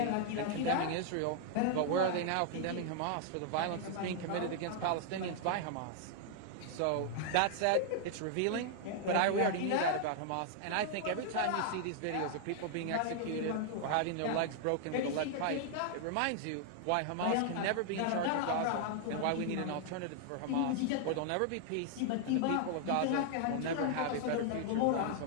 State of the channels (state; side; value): different; both; correlation 0.00